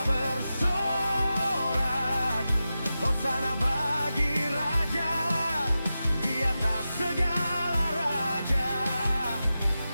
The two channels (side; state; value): both; inverted; correlation -0.92